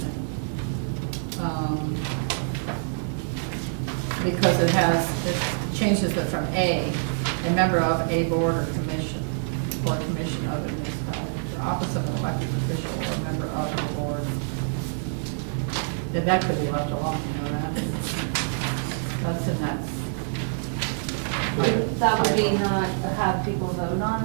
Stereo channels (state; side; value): silent; left; digital silence